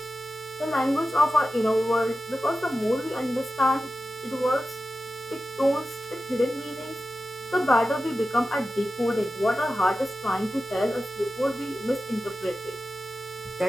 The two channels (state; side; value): normal; both; correlation 0.93